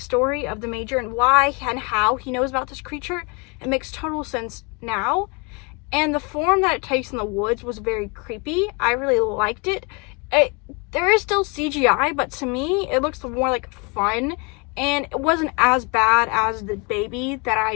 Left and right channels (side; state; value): right; quieter; 30.9 dB